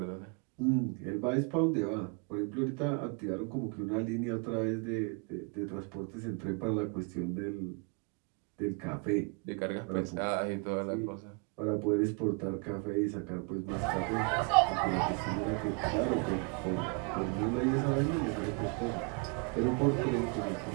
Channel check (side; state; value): left; quieter; 35.2 dB